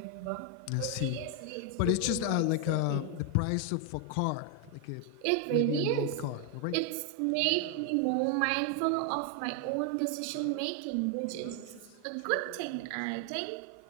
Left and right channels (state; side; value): different; both; correlation 0.01